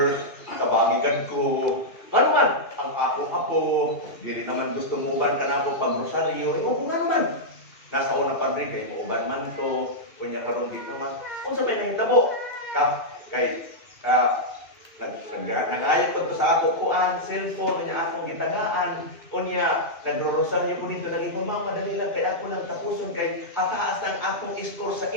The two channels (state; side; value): late; right; 2.5 ms